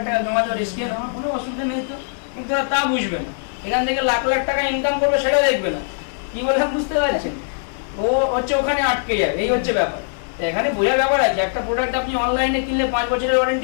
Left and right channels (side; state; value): right; silent; digital silence